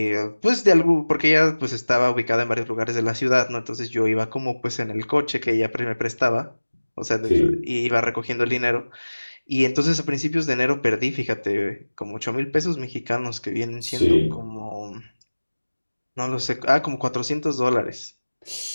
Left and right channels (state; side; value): inverted; both; correlation -1.00